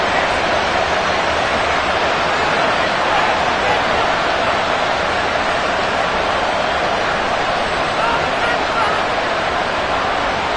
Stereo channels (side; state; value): both; identical; correlation 1.00